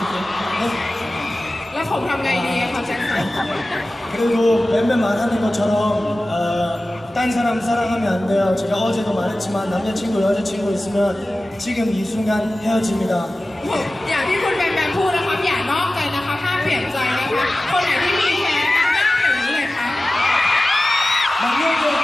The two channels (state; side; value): normal; both; correlation 0.96